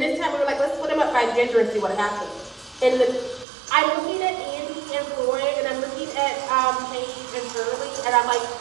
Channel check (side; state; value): left; drops out; at 3.5 s